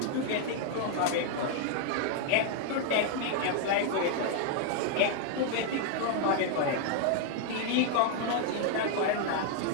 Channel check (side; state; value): both; different; correlation 0.00